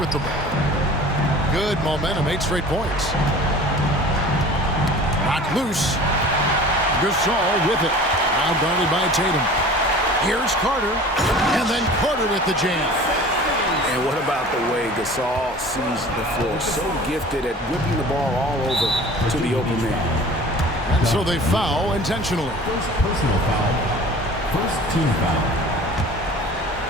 the ball. Good momentum, 8 straight points. Knocked loose. Gasol with it. Now guarded by Tatum. Here's Carter. And then Carter with the jam. And what about the way Gasol sees the floor? So gifted at whipping the ball all over to the open man. And so they foul intentionally. First personal foul. First team foul.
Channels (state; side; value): normal; both; correlation 0.43